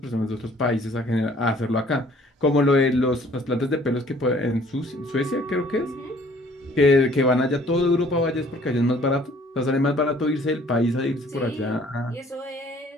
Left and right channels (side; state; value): both; normal; correlation 0.57